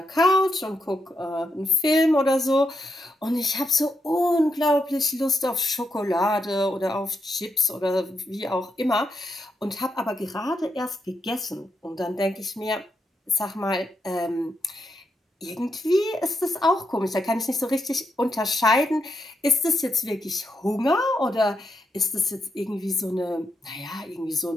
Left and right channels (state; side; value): normal; both; correlation 0.80